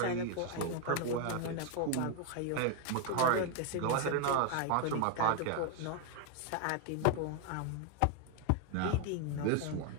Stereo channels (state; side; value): different; both; correlation 0.00